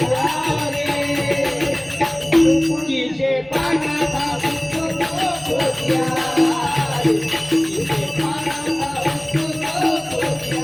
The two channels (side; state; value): right; noise; hum, 28 dB below the sound